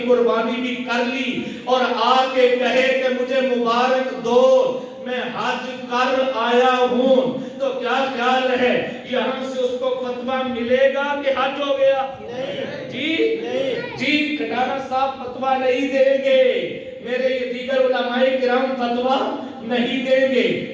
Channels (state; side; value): identical; both; correlation 1.00